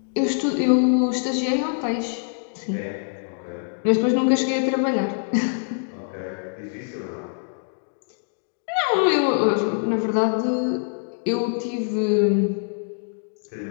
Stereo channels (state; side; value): silent; right; digital silence